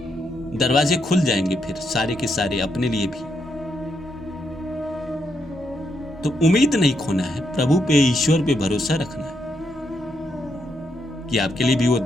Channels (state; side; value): normal; both; correlation 0.79